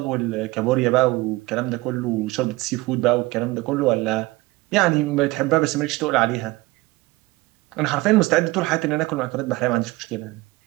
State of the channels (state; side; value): quieter; left; 21.0 dB